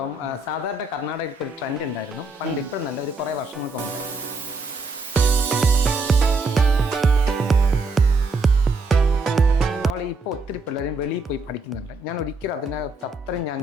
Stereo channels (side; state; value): left; quieter; 3.3 dB